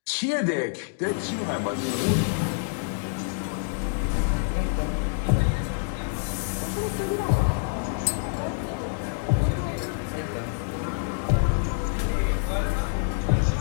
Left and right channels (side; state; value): right; silent; digital silence